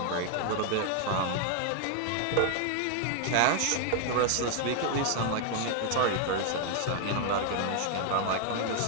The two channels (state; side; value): different; both; correlation 0.00